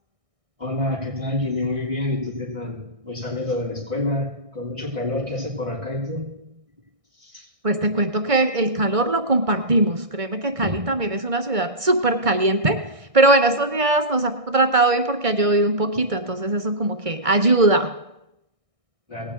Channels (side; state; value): left; late; 1.6 ms